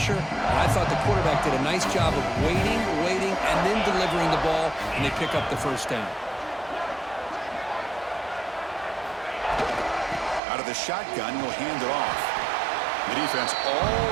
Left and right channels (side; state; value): left; drops out; at 10.4 s